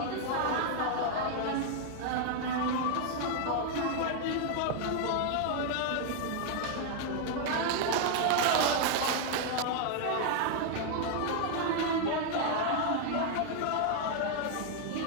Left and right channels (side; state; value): both; different; correlation 0.00